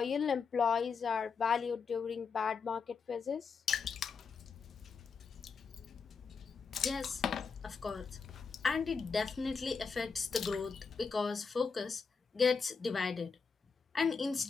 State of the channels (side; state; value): right; quieter; 5.4 dB